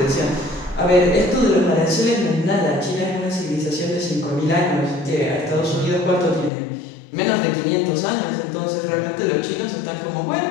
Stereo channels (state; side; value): drops out; right; at 6.5 s